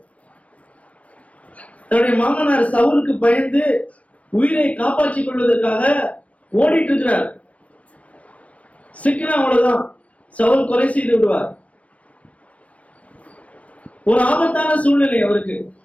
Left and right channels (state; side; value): late; right; 0.065 ms